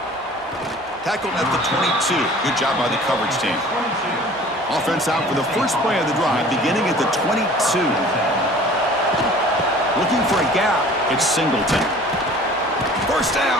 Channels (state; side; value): normal; both; correlation 0.47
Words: Tackled at the 22. Good job by the coverage team. Offense out for the first play of the drive, beginning at the 22. Looking for a gap. It's Singleton. First